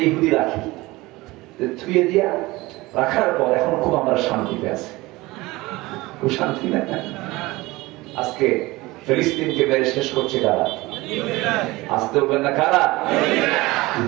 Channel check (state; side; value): quieter; left; 20.7 dB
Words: ইহুদি রাখি। থুয়ে দিয়া রাখার পর এখন খুব আমরা শান্তিতে আছি। খুব শান্তি না? আজকে ফিলিস্তিনকে মেরে শেষ করছে কারা? আসতে বলবেন না কারা?